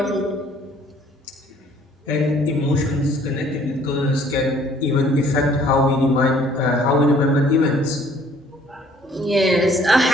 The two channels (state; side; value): normal; both; correlation 0.59